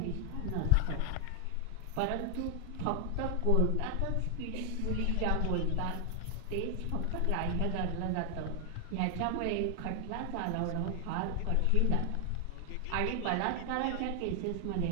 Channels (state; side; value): different; both; correlation 0.00